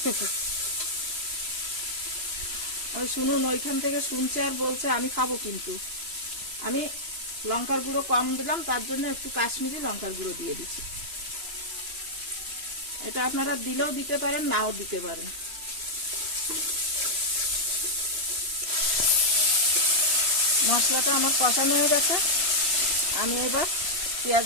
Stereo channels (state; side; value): late; left; 3.0 ms